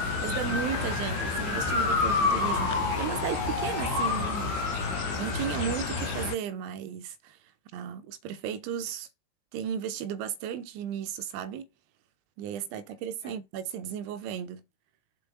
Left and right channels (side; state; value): left; late; 19 ms